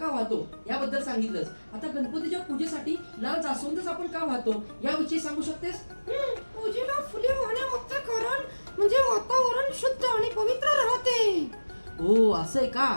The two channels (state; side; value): inverted; both; correlation -1.00